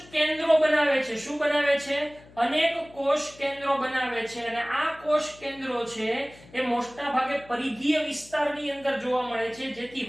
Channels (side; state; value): left; noise; hum, 23 dB below the sound